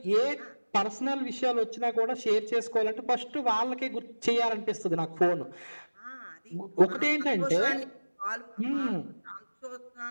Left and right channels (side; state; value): both; inverted; correlation -1.00